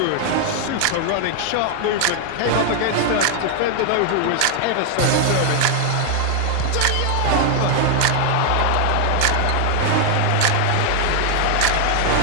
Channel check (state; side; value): different; both; correlation 0.00